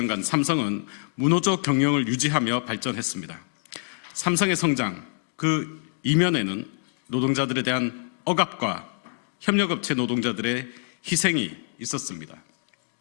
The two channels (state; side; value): silent; right; digital silence